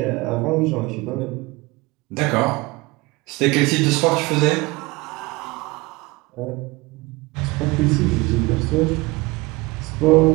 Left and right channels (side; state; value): left; quieter; 23.0 dB